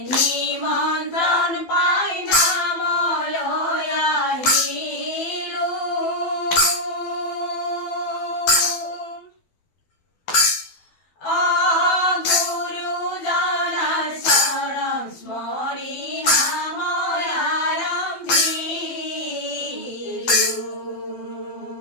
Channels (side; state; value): right; late; 12 ms